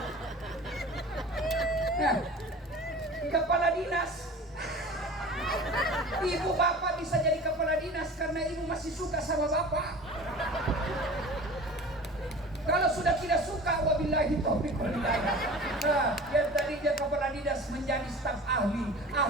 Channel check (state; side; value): normal; both; correlation 0.39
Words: Nah, kepala dinas. Ibu bapak bisa jadi kepala dinas karena ibu masih suka sama bapak. Kalau sudah tidak suka, wabillahi taufiq wal hidayah. Nah, yang tadi dia kepala dinas menjadi staf ahli